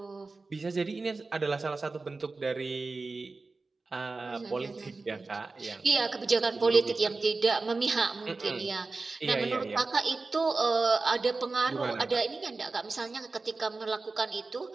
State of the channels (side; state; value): left; quieter; 3.7 dB